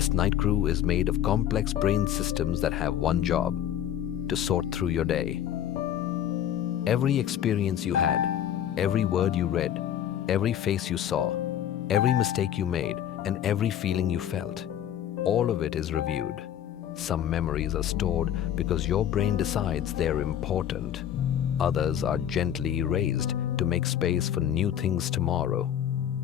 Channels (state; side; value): quieter; right; 10.4 dB